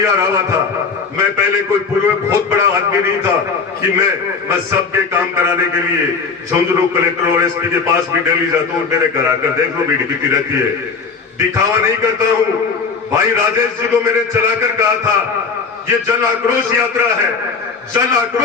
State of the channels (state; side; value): quieter; right; 5.1 dB